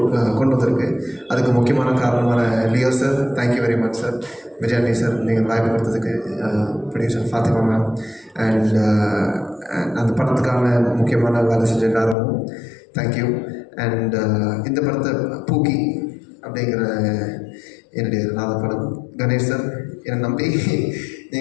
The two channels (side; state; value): right; drops out; at 12.2 s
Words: கொண்டு வந்திருக்கு. அதுக்கு முக்கியமான காரணமான Leo sir, thank you very much sir. Vijayani sir, நீங்கள் வாய்ப்பு கொடுத்ததுக்கு. ப்ரொடியூசர் ஃபாத்திமா மேம், அண்ட் அந்த படத்துக்கான முக்கியமான வேலை செஞ்ச எல்லாரும் தேங்க்யூ. அண்ட் இந்த படத்தை பூக்கி அப்படிங்கிற என்னுடைய 4வது படம் கணேஷ் சார் என்னை நம்பி